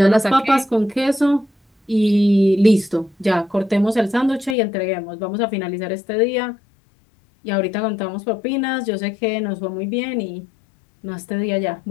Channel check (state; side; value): drops out; right; at 4.5 s